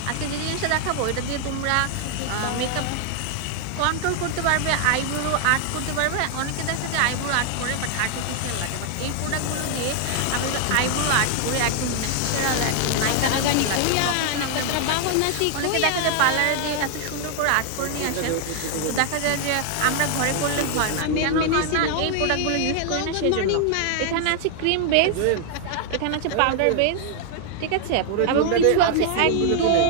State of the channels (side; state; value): both; different; correlation 0.00